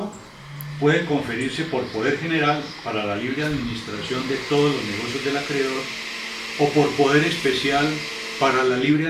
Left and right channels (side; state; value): both; identical; correlation 1.00